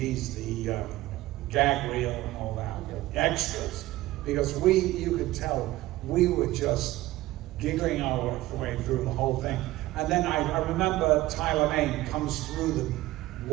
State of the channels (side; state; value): left; quieter; 17.2 dB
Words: the gag reel and all that, extras, because you could tell we were just giggling our way through the whole thing. And then I remember Tyler Mane comes through the